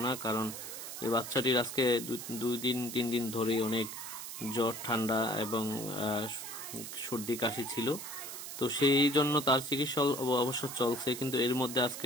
কারণ এই বাচ্চাটির আজকে 2-3 দিন ধরেই অনেক জ্বর, ঠান্ডা এবং সর্দি কাশি ছিল। তো সেই জন্য তার চিকিৎসা অবশ্য চলছে, কিন্তু এর মধ্যে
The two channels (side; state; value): right; noise; hiss, 9 dB below the sound